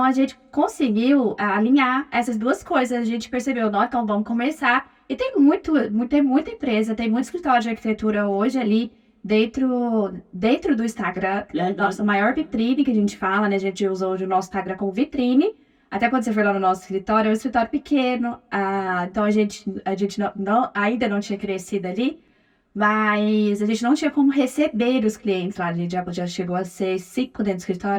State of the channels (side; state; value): both; identical; correlation 1.00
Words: a gente conseguiu alinhar essas duas coisas. A gente percebeu, não, então vamos começar. E tem muita empresa, tem muito escritório de arquitetura hoje ali dentro do Instagram. Nossa maior vitrine que a gente fala, né? A gente usa hoje o nosso Instagram como vitrine. Até quando você for lá no nosso escritório, é um escritório pequeno. Então a gente ainda não tinha crescido ali. Mas a gente não tinha como receber os clientes lá. A gente já chegou a ser 5 dentro do